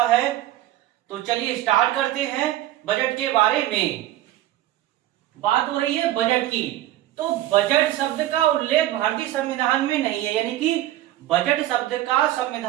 है, तो चलिए स्टार्ट करते हैं बजट के बारे में। बात हो रही है बजट की, तो बजट शब्द का उल्लेख भारतीय संविधान में नहीं है, यानी कि बजट शब्द का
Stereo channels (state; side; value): quieter; left; 14.4 dB